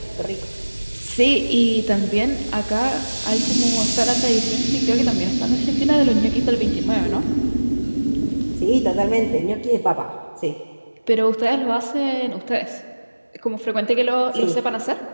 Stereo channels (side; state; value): both; inverted; correlation -1.00